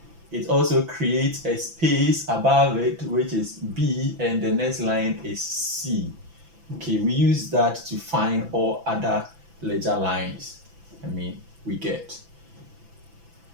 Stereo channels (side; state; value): left; late; 6.0 ms